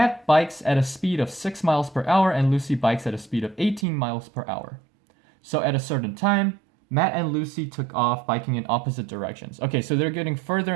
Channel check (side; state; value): left; drops out; at 3.9 s